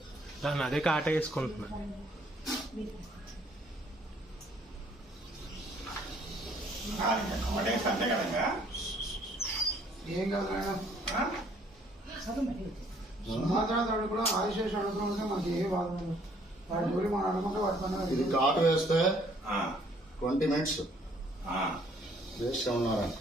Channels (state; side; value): normal; both; correlation 0.63